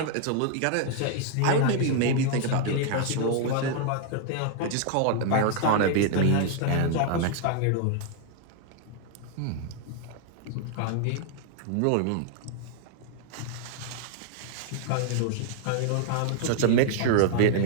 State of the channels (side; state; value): both; different; correlation 0.00